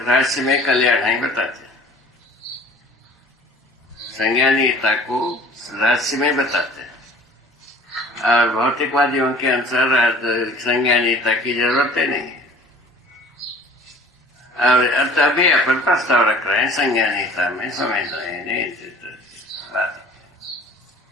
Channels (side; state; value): both; normal; correlation 0.48